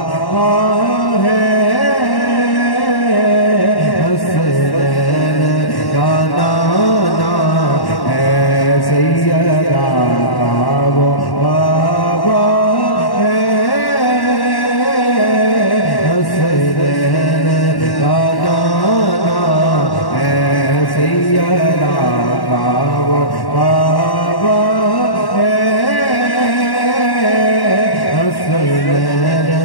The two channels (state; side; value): late; right; 1.1 ms